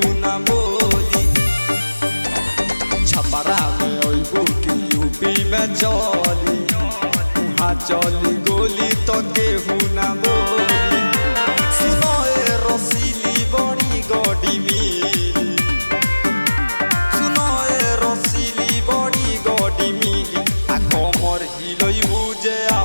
ना बोली। छपरा में अइबू की यूपी में चली उहाँ चली गोली तो केहू ना बोली। सुनो ए रसीली बड़ी गड़ी मिली, सुनो ए रसीली बड़ी गड़ी मिली। आ कमर हिलइबू जे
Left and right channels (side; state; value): both; inverted; correlation -1.00